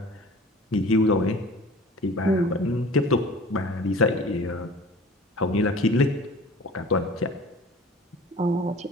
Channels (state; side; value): normal; both; correlation 0.43